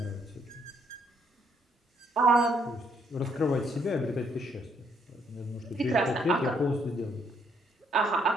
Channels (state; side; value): normal; both; correlation 0.70